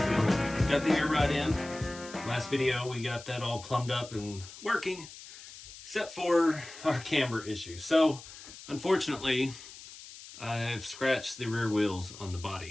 Got the air rod in. Last video we got that all plumbed up and working, except for our camber issue. So unfortunately, I've scratched the rear wheels on the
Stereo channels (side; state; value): left; noise; hiss, 16 dB below the sound